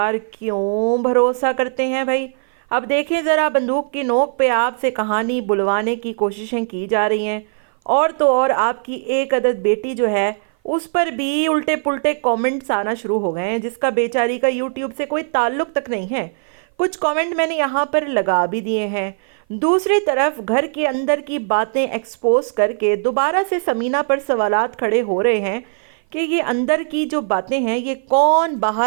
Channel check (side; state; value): left; silent; 56 dB below the other